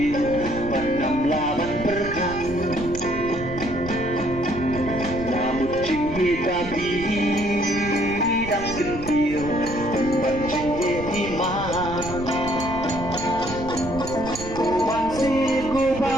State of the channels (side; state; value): right; noise; rumble, 11 dB below the sound